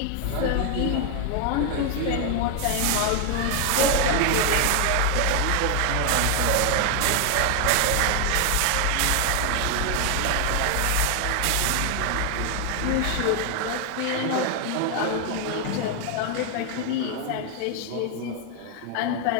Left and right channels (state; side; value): different; both; correlation 0.00